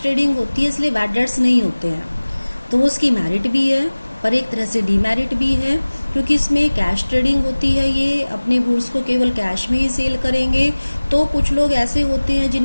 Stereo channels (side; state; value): both; inverted; correlation -1.00